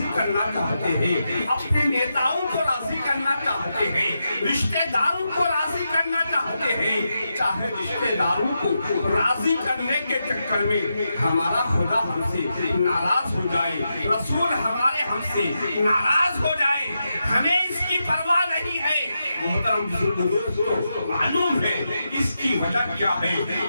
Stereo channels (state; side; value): inverted; both; correlation -0.86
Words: کرنا چاہتے ہیں، اپنے نیتاؤں کو راضی کرنا چاہتے ہیں، رشتہ داروں کو راضی کرنا چاہتے ہیں. چاہے رشتہ داروں کو راضی کرنے کے چکر میں ہمارا خدا ہم سے ناراض ہو جائے، رسول ہمارے ہم سے ناراض ہو جائے، ہمیں اس کی پرواہ نہیں ہے. محترم بزرگوں، دوستو، معلوم ہے اس کی وجہ کیا ہے؟